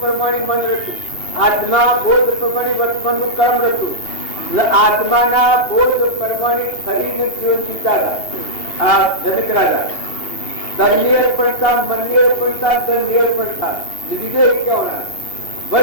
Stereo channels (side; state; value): right; late; 2.8 ms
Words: પ્રમાણે મન રચ્યું, આત્મા બોધ પ્રમાણે વર્તમાનનું કર્મ રચ્યું. આત્માના બોધ પ્રમાણે ફરીને જીવન જીવતા હતા આ જનક રાજા. તનની અર્પણતા, મનની અર્પણતા, ધનની અર્પણતા લીધે કહેવાના